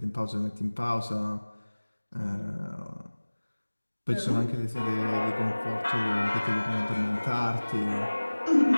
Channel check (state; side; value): inverted; both; correlation -1.00